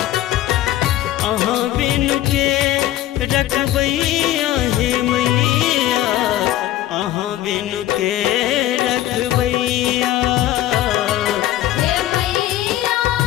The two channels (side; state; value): right; quieter; 13.7 dB